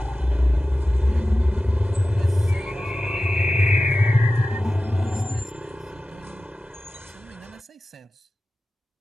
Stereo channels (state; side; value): normal; both; correlation 0.95